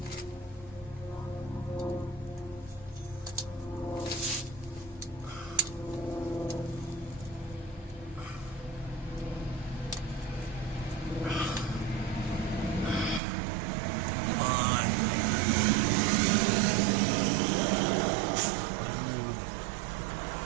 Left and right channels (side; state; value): left; drops out; at 13.2 s